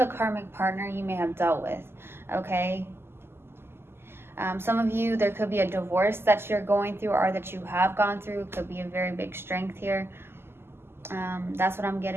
karmic partner you may have dealt with, okay? Some of you, there could be a divorce that you're going through or that you have gone through. It could be a very big strength here. That's what I'm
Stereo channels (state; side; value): late; left; 0.12 ms